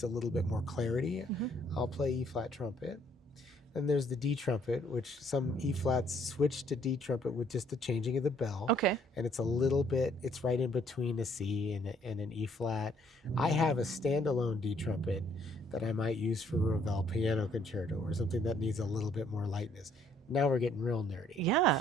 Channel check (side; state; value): both; normal; correlation 0.65